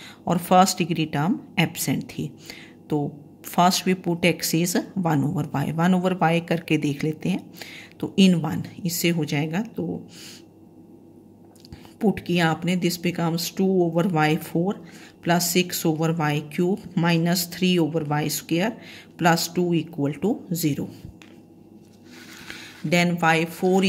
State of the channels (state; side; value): identical; both; correlation 1.00